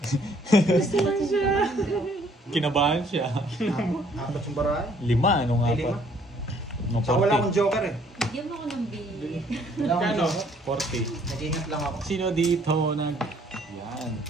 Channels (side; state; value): both; normal; correlation 0.62